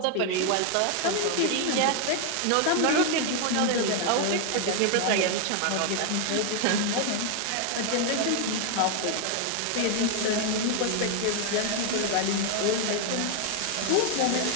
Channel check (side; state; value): both; different; correlation 0.00